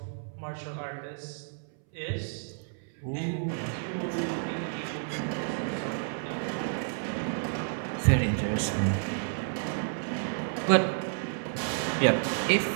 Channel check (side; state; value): left; silent; 57 dB below the other